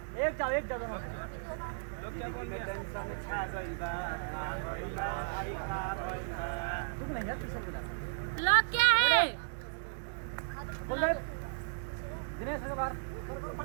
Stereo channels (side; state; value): left; silent; digital silence